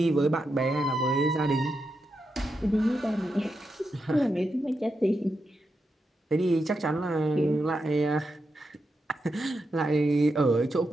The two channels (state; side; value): normal; both; correlation 0.86